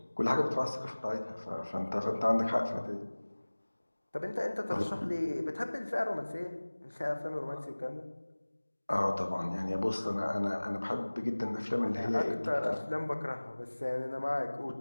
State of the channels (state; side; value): inverted; both; correlation -1.00